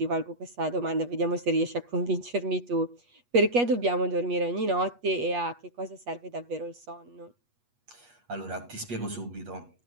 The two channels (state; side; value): late; left; 8.3 ms